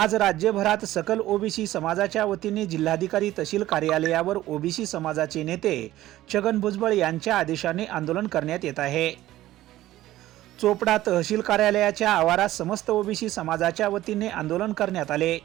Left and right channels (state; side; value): quieter; left; 15.1 dB